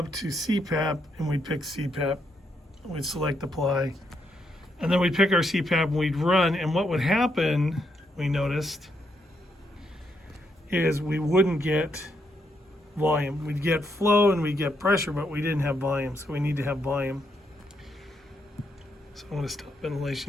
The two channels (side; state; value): both; normal; correlation 0.78